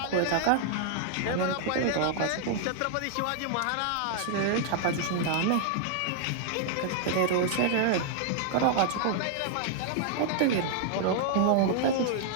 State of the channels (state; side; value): different; both; correlation 0.00